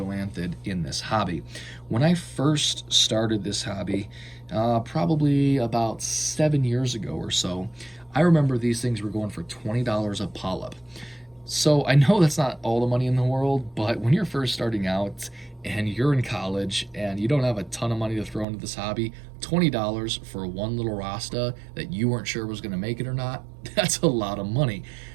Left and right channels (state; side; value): drops out; left; at 18.4 s